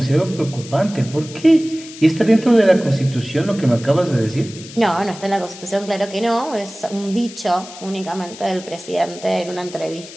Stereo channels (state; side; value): noise; left; hiss, 16 dB below the sound